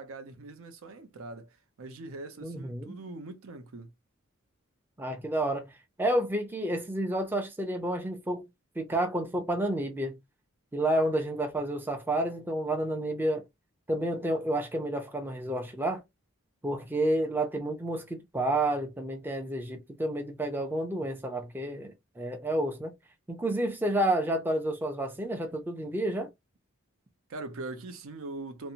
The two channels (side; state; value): both; normal; correlation 0.66